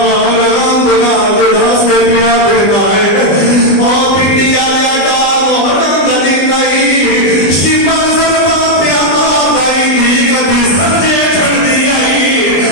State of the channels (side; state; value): right; late; 20 ms